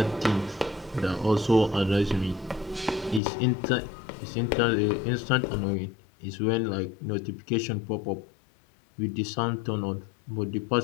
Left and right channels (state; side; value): drops out; right; at 3.2 s